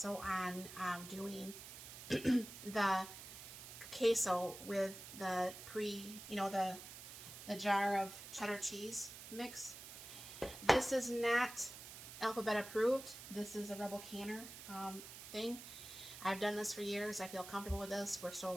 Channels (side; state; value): right; noise; hiss, 12 dB below the sound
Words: on doing the queso with the the jar of cheddar cheese mix. This is not alphabet approved. This is a Rebel Canner thing. I've done this for years. I feel comfortable with this. We're still